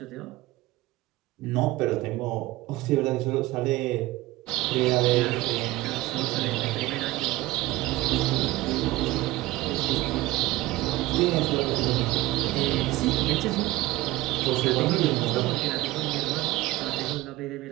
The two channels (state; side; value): quieter; left; 18.0 dB